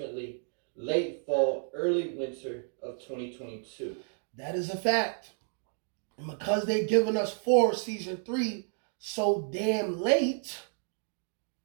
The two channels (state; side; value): silent; left; 57 dB below the other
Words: late fall, early winter of 2022. That is a fact. And because they've given us Season 3 so damn late,